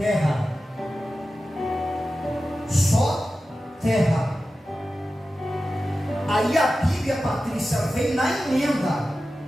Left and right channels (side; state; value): both; normal; correlation 0.93